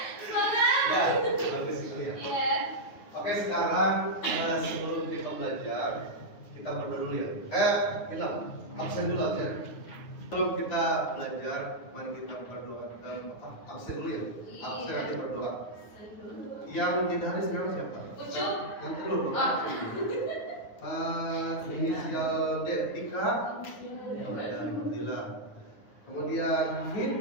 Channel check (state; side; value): late; right; 9.5 ms